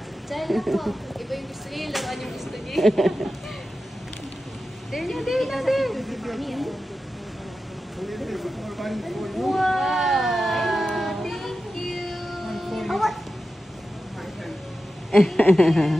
Diyan na po. Iba yung gusto niya, laruan yung gusto niya. There na, there na, there. Wow! Thank you!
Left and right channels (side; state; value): both; normal; correlation 0.92